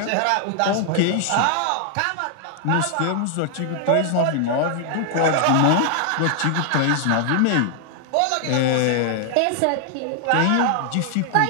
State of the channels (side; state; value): both; different; correlation 0.00